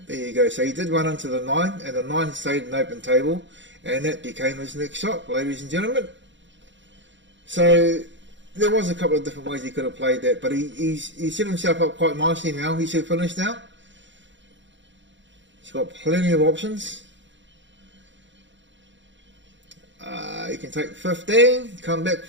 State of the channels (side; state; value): left; late; 0.54 ms